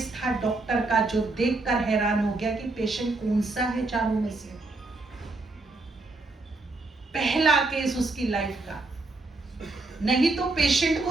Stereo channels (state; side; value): quieter; left; 3.2 dB